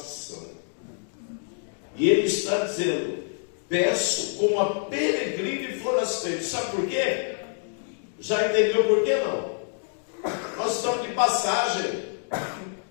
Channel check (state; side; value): silent; right; 60 dB below the other